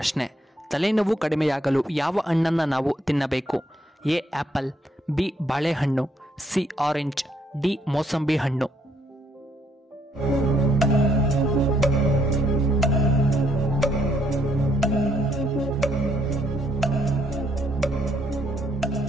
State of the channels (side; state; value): both; normal; correlation 0.71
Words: ತಲೆನೋವು ಕಡಿಮೆಯಾಗಲು ಯಾವ ಹಣ್ಣನ್ನು ನಾವು ತಿನ್ನಬೇಕು? ಎ ಆಪಲ್, ಬಿ ಬಾಳೆಹಣ್ಣು, ಸಿ ಆರೆಂಜ್, ಡಿ ಮೋಸಂಬಿ ಹಣ್ಣು.